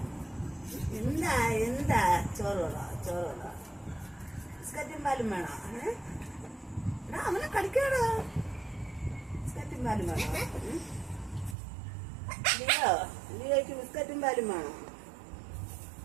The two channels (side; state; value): left; drops out; at 11.6 s